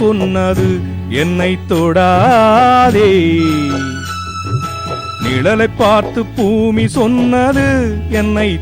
சொன்னது என்னை தொடாதே, நிழலை பார்த்து பூமி சொன்னது என்னை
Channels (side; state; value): both; identical; correlation 1.00